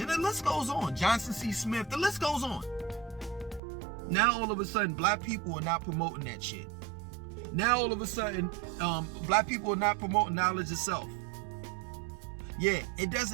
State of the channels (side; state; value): left; drops out; at 3.6 s